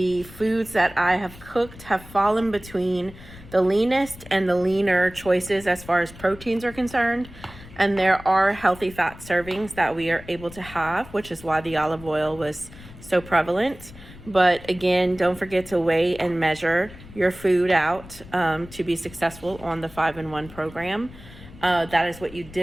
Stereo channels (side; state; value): left; noise; rumble, 18 dB below the sound